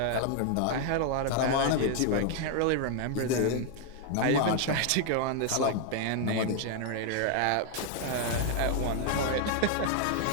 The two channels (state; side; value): different; both; correlation 0.00